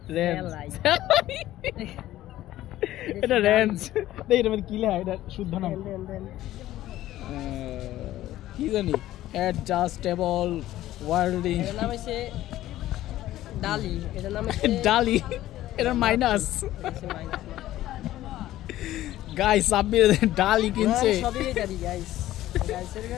রেঞ্জ, এটা রেঞ্জ। দেখ এটা মানে কি লেখা, এটা শুদ্ধ নাম কি জানি, অ্যাডজাস্টেবল ওয়ার্ল্ডিং এটার নাম হচ্ছে ডালি, এটার নাম হচ্ছে ডালি, এটা মাইনাস। মাইনাস। গাইস সাব্বির ডালি কিনছে। সবই ডালি গাইস, গাইসের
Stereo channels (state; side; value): quieter; right; 14.4 dB